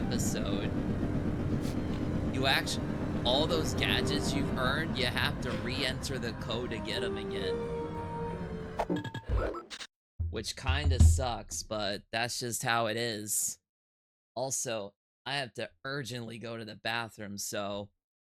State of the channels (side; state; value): both; identical; correlation 1.00